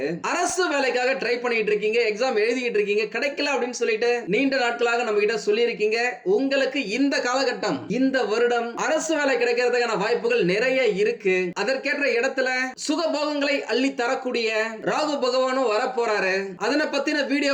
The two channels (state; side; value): identical; both; correlation 1.00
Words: அரசு வேலைக்காக ட்ரை பண்ணிட்டு இருக்கீங்க, எக்ஸாம் எழுதிட்டு இருக்கீங்க, கிடைக்கல அப்படின்னு சொல்லிட்டு நீண்ட நாட்களாக நம்ம கிட்ட சொல்லி இருக்கீங்க. உங்களுக்கு இந்த காலகட்டம், இந்த வருடம் அரசு வேலை கிடைக்கிறதுக்கான வாய்ப்புகள் நிறைய இருக்கு. அதற்கேற்ற இடத்துல சுகபோகங்களை அள்ளி தரக்கூடிய ராகு பகவானும் வரப்போறாரு. அதனை பத்தின